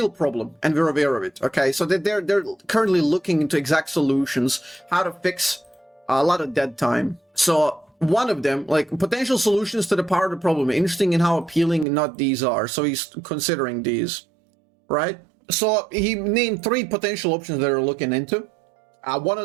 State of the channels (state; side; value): drops out; left; at 11.9 s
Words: problem, and we're aware of it, okay? So they're currently looking into exact solutions, how to fix a lot of dead time. So one of them, like potential solutions to the part of the problem, interesting in how appealing not these are. So he's considering these, right? So he named 3 potential options that are looking into. One